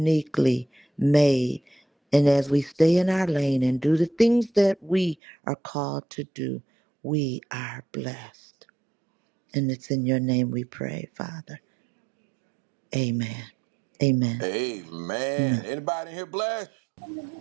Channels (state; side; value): drops out; left; at 5.2 s